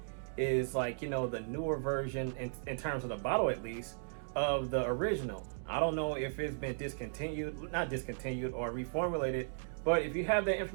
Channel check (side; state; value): left; silent; digital silence